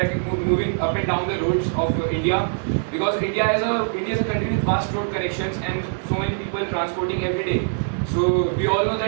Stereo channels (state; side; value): silent; left; digital silence